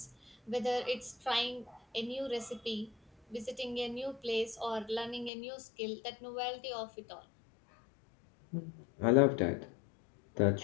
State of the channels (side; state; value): right; drops out; at 5.3 s